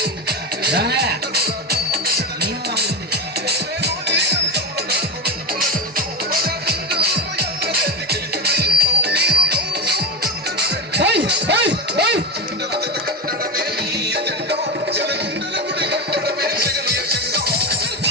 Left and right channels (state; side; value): normal; both; correlation 0.15